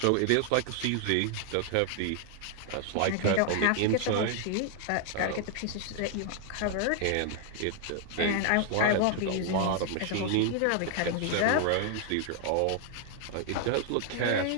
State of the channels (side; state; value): both; different; correlation 0.00